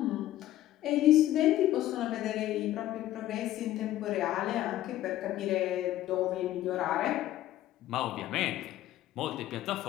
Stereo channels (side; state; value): right; quieter; 13.9 dB